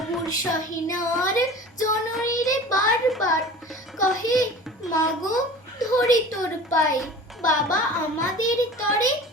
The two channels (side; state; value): both; normal; correlation 0.39